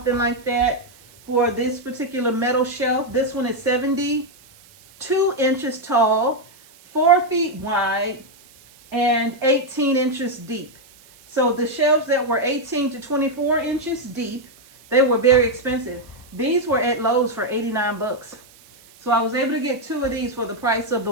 like that for this particular metal shelf. This one is 72 inches tall, 4 feet wide, and 18 inches deep. So the shelves that were 18 to 24 inches deep, they were very expensive. These were at Lowe's for 89 bucks. So I was able to get 2 of these for the price of the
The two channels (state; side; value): noise; right; hiss, 26 dB below the sound